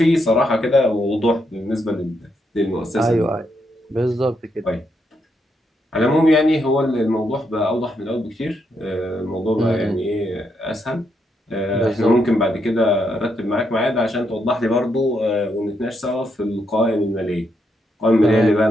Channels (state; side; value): normal; both; correlation 0.79